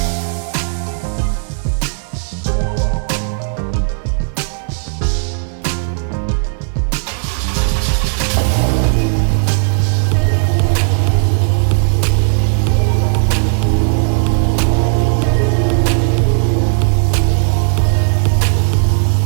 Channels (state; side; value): silent; left; 70 dB below the other